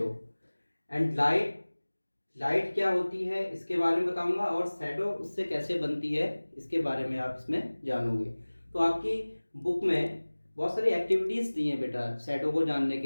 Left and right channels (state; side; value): inverted; both; correlation -1.00